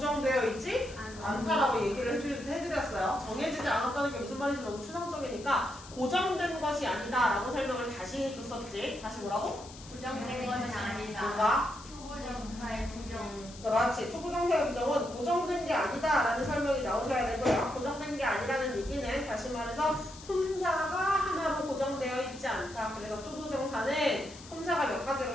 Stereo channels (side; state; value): left; noise; hiss, 18 dB below the sound